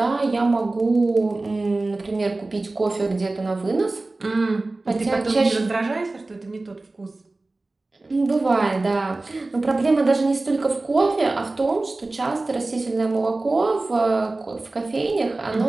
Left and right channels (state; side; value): quieter; left; 3.1 dB